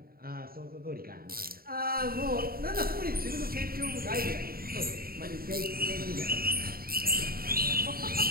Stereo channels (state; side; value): late; left; 0.43 ms